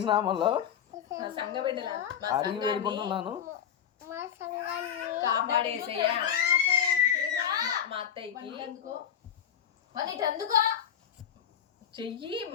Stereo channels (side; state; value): right; quieter; 8.9 dB